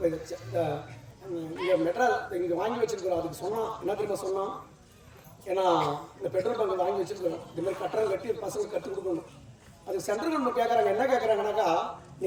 இங்கே மெட்ராஸ் இங்கே வாங்கி வச்சிருக்கிறோம். அதுக்கு சொன்னான் என்ன தெரியுமா சொன்னான், ஏன்னா இந்த பெட்ரோல் பங்க் வாங்கி வச்சிருக்கிறோம், இந்த மாதிரி கட்டணம் கட்டி பசங்களுக்கு கற்றுக் கொடுக்கணும். அதுக்கு சென்ட்ரல் கவர்மெண்ட் கேட்குறாங்க. என்ன கேட்குறாங்கனாக்கா,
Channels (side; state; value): both; identical; correlation 1.00